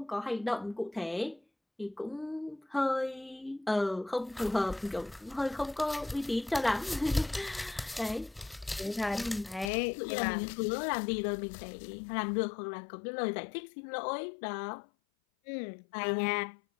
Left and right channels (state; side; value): drops out; right; at 9.7 s